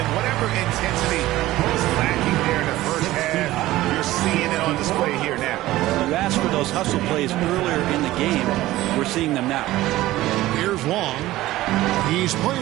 whatever intensity was lacking there in the first half, you're seeing it on display here now. You asked for those hustle plays earlier in the game. We're seeing them now. Here's Long. He's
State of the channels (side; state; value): left; quieter; 16.4 dB